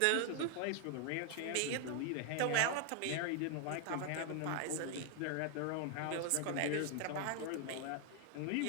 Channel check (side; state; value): both; different; correlation 0.00